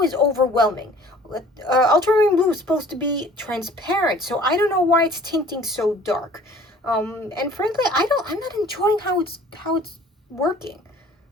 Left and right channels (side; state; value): both; normal; correlation 0.51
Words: is overwhelming. Ultramarine blue is supposed to be transparent, so I don't know why it's tinting so dark. And frankly, I'm not enjoying how it's working.